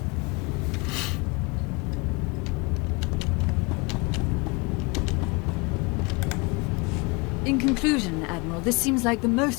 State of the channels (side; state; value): right; quieter; 28.4 dB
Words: In conclusion, Admiral, this seems like the